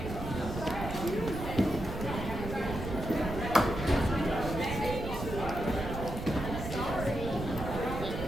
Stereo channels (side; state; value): right; noise; rumble, 6 dB below the sound